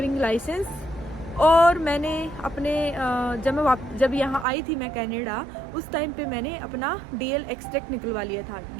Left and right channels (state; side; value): drops out; left; at 4.5 s